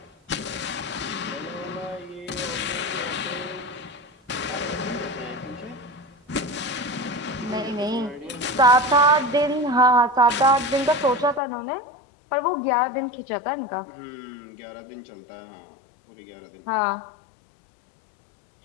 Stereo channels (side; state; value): right; drops out; at 11.4 s